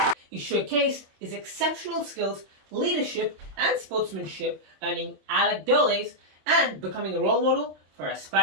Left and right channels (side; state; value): left; late; 27 ms